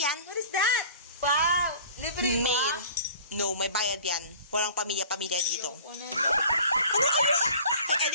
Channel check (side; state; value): both; inverted; correlation -0.44